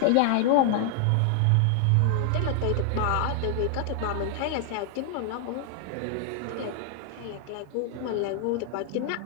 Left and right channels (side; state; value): both; different; correlation 0.00